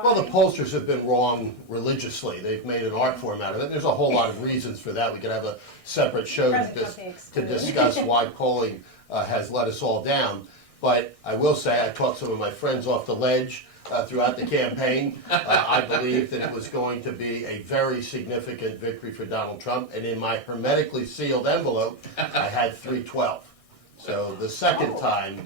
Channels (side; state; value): right; late; 1.6 ms